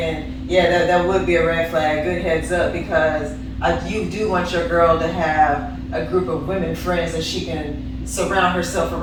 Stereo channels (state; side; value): identical; both; correlation 1.00